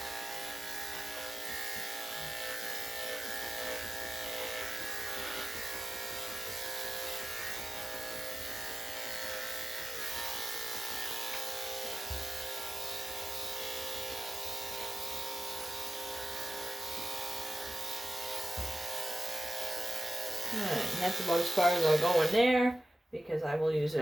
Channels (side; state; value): both; normal; correlation 0.95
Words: Alright, and that's about as far as I'll go in there because I will use